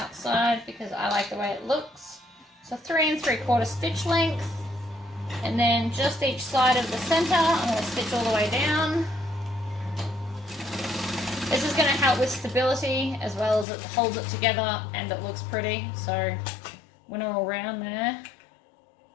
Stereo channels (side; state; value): right; drops out; at 13.7 s